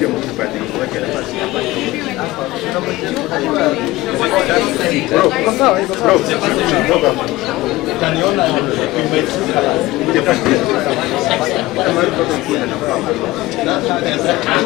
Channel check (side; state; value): right; quieter; 18.6 dB